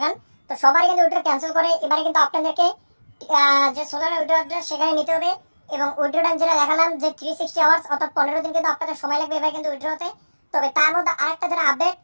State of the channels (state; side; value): inverted; both; correlation -1.00